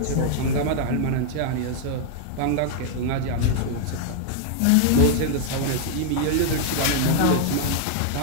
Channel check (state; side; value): different; both; correlation 0.00